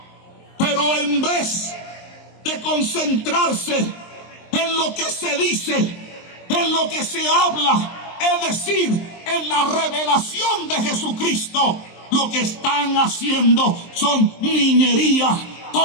pero en vez de concentrarse en lo que se dice, en lo que se habla, es decir, en la revelación de Jesucristo, lo que están haciendo son niñerías,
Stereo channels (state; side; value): late; right; 23 ms